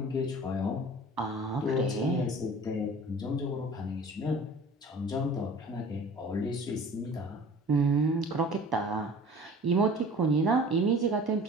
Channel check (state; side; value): normal; both; correlation 0.44